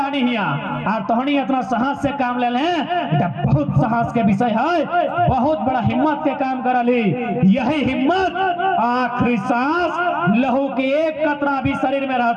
हिया, और तोहनी इतना साहस से काम ले लें। बहुत साहस के विषय है, बहुत बड़ा हिम्मत के काम करली। यही हिम्मत आखिरी सांस लहू के एक कतरा भी शरीर में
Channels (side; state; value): both; identical; correlation 1.00